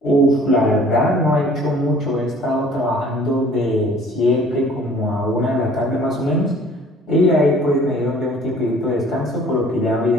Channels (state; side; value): normal; both; correlation 0.53